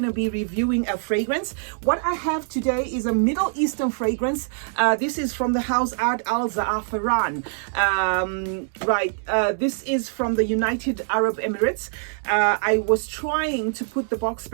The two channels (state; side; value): silent; left; digital silence